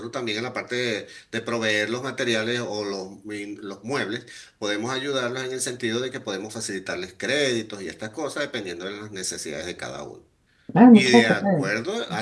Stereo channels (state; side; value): identical; both; correlation 1.00